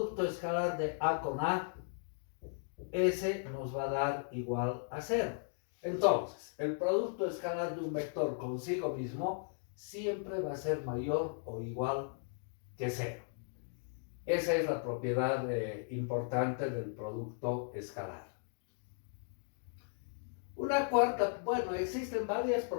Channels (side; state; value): right; silent; digital silence